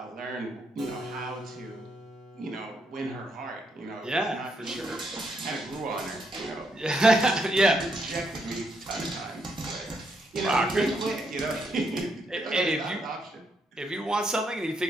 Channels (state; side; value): normal; both; correlation 0.77